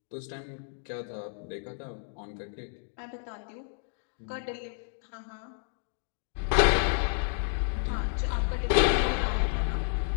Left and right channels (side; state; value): right; silent; digital silence